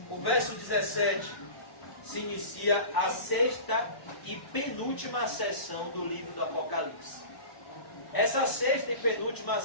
O verso 17 se inicia a 6ª e penúltima sessão do livro do Apocalipse. Essa 6ª e penúltima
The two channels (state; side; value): late; right; 1.0 ms